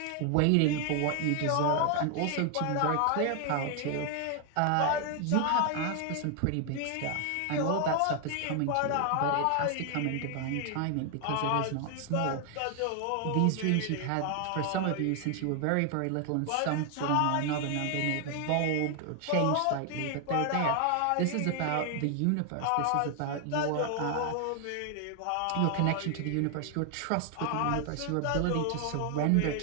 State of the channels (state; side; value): different; both; correlation 0.00